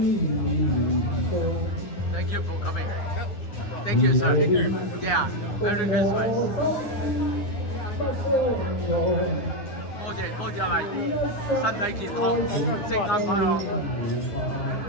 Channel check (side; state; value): right; late; 9.7 ms